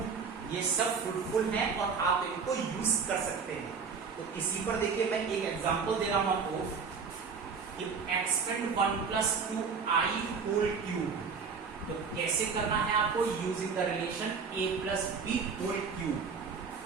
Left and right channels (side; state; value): left; quieter; 5.6 dB